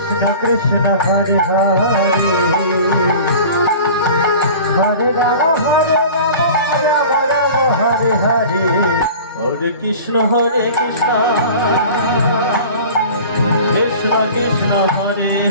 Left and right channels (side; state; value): both; inverted; correlation -0.40